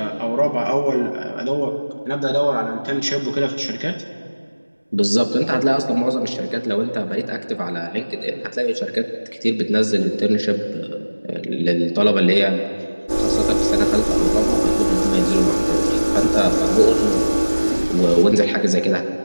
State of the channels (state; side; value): inverted; both; correlation -1.00